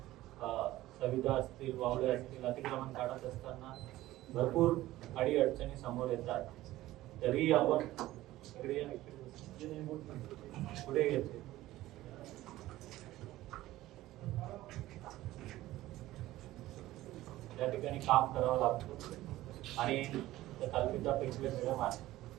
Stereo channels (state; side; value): quieter; left; 16.1 dB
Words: सविधा असतील, वावडे असतील, अतिक्रमण काढत असताना भरपूर अडचणी समोर येतात. तरी आपण पुढे येते त्या ठिकाणी काम करावं लागतं. आणि कल्पिता पेशवे मॅडम आहे,